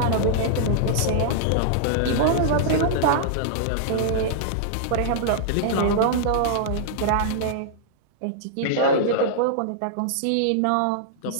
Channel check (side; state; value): both; different; correlation -0.01